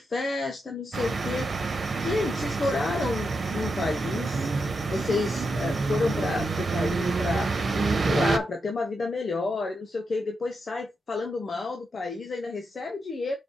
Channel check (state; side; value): normal; both; correlation 0.85